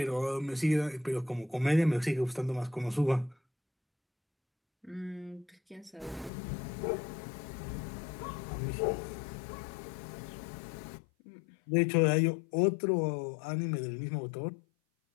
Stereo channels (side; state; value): right; drops out; at 6.3 s